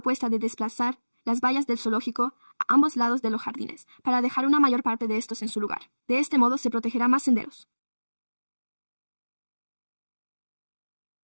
de desplazar las vallas del zoológico a ambos lados de los jardines, para dejar una mayor parte de estos en su lugar. De este modo se protegerá más senderos.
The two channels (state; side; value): inverted; both; correlation -1.00